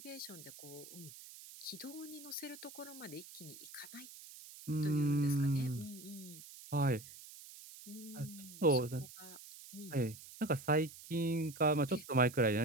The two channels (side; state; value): right; noise; hiss, 16 dB below the sound